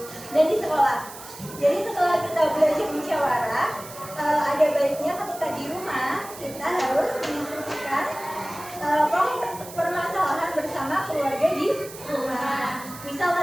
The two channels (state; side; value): noise; right; hiss, 15 dB below the sound